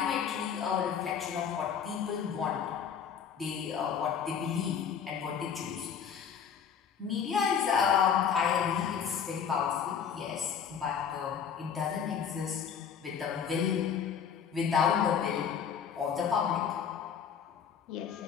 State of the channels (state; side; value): quieter; right; 7.5 dB